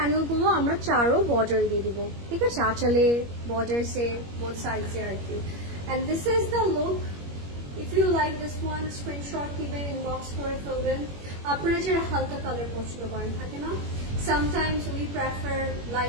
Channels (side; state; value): left; late; 21 ms